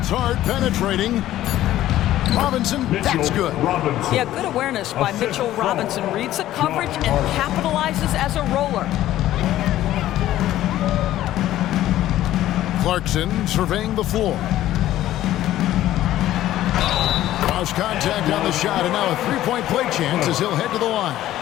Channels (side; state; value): right; quieter; 13.8 dB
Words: Hart penetrating. Robinson, that's good. Yeah, good awareness by Mitchell Robinson. Reads the coverage and capitalizes as a roller. Clarkson surveying the floor. Cross contact on the shot, and now a three-point play chance as he'll head to the line.